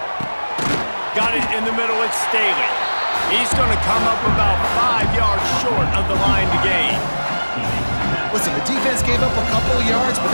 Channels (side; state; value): both; inverted; correlation -1.00